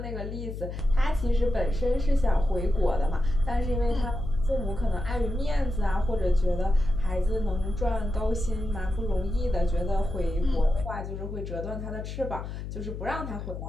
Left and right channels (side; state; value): left; noise; hum, 7 dB below the sound